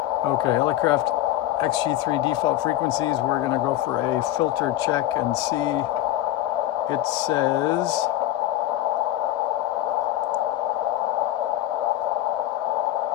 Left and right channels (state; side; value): quieter; right; 14.0 dB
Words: Okay, Elecraft XG3 default frequencies. We're going to go for a filter check and see. It says